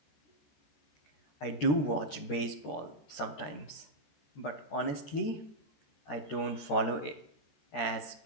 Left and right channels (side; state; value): right; late; 13 ms